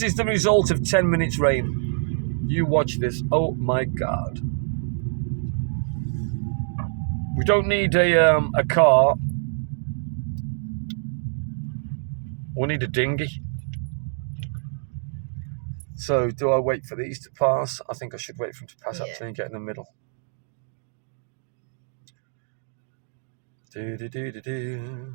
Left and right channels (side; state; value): left; silent; digital silence